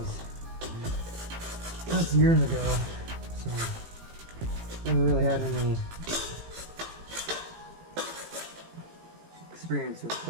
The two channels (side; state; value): left; late; 18 ms